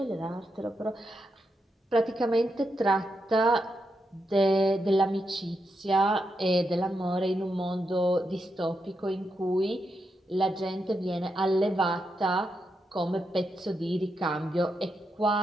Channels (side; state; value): both; normal; correlation 0.84